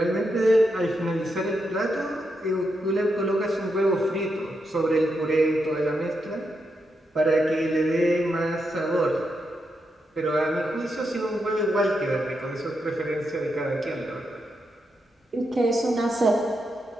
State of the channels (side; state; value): both; normal; correlation 0.84